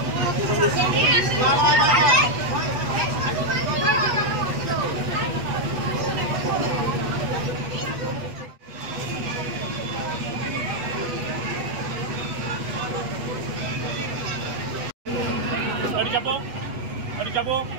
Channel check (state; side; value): late; left; 8.1 ms